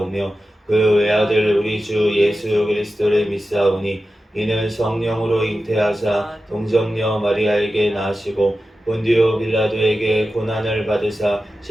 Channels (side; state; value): both; normal; correlation 0.93